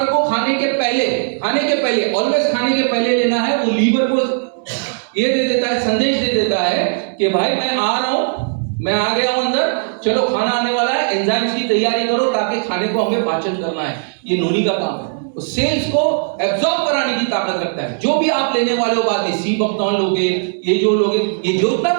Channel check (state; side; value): silent; left; 68 dB below the other